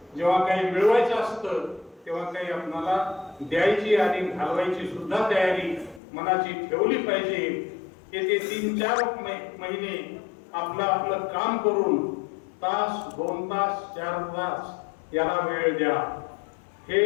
जेव्हा काही मिळवायचं असतं तेव्हा काही आपल्याला द्यायची आणि घालवायची सुद्धा तयारी मनाची ठेवली पाहिजे. येथे 3-4 महिने आपलं काम करून तास, 2 तास, 4 तास याला वेळ द्या. हे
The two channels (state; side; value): drops out; right; at 6.0 s